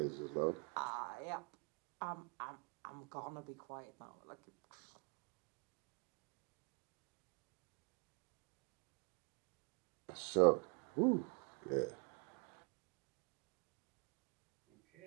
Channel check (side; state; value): left; quieter; 36.6 dB